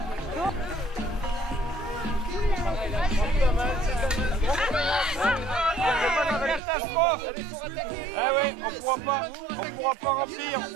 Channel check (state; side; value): drops out; left; at 6.6 s